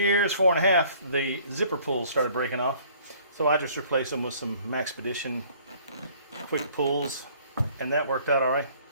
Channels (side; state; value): both; inverted; correlation -0.56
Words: 4.5, the zipper pulls started breaking off. So I just replaced them with some Maxpedition quick pulls, and that worked out all right.